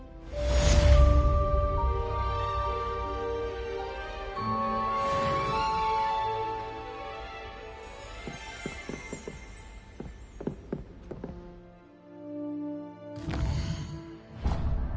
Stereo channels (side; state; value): both; identical; correlation 1.00